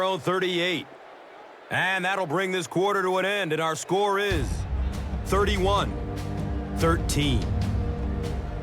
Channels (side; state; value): both; identical; correlation 1.00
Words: own 38. And that'll bring this quarter to an end, and our score is 31-13.